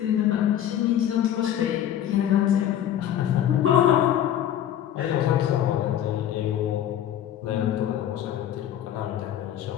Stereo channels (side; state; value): right; quieter; 10.9 dB